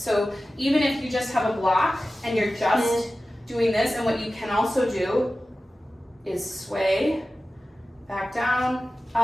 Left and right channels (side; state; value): both; normal; correlation 0.95